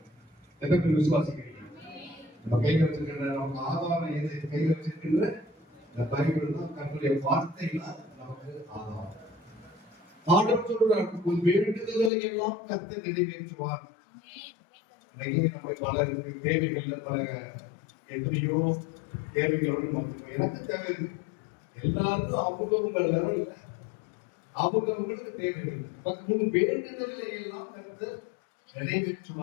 எத்தனை விசுவாசிக்கிறீங்க? நம்ம கையில் வச்சிருக்கிற நம்ம ஆதாரம் எது? கையில் வச்சிருக்கின்ற இந்த பைபிள் தான், கர்த்தருடைய வார்த்தைகள் நமக்கு ஆதாரம். ஆண்டவர் சொல்றார், உன் வேண்டுதல்களை எல்லாம் கர்த்தர் நிறைவேற்றுவார். நம்ம பலருக்கு தேவைகள் பல எத்தனையோ தேவைகளோடு நமக்கு எனக்கு தேவை எல்லாருக்கும் அவங்கவுங்க லெவல்ல அவங்கவுங்களுக்கு தேவைகள் வேண்டுதல்களை எல்லாம் கருத்து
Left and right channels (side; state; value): right; drops out; at 12.1 s